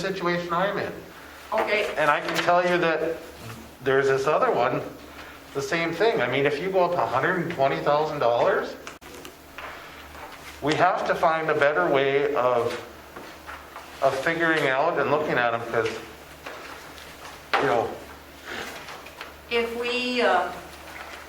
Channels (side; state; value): both; identical; correlation 1.00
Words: I'm in. Okay, And I can tell you that there's this other one, the same thing. I mean, if you go up $120,000, we have to find a better way of figuring out and looking at them, because, you know, if we, I